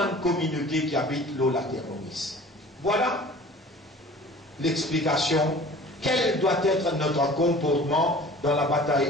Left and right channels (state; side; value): normal; both; correlation 0.45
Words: communauté qui habite l'Olaterroris. Voilà l'explication. Quel doit être notre comportement dans la